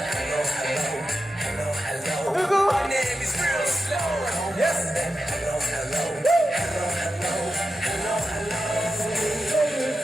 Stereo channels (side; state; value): both; normal; correlation 0.90